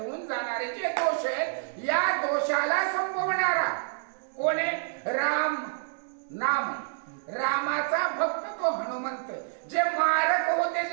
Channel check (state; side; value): silent; left; digital silence